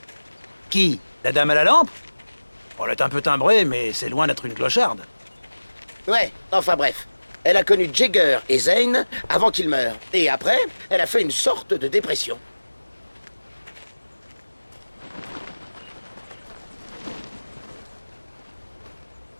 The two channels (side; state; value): both; inverted; correlation -1.00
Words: Qui? La dame à la lampe? Elle est un peu timbrée, mais c'est loin d'être une clocharde. Ouais, enfin bref. Elle a connu Jagger et Zane avant qu'ils meurent. Et après, elle a fait une sorte de dépression.